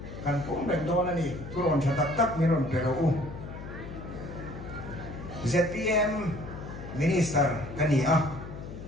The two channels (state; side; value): noise; left; hum, 11 dB below the sound